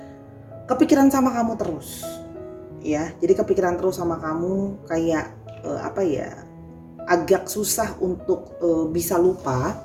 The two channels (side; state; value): both; identical; correlation 1.00